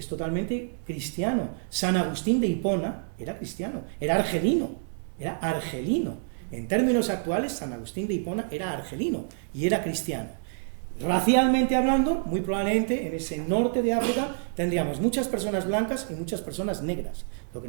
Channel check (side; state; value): left; silent; digital silence